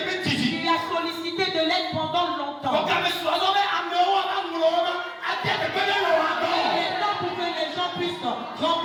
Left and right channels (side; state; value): both; identical; correlation 1.00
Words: a sollicité de l'aide pendant longtemps. Il est temps pour que les gens puissent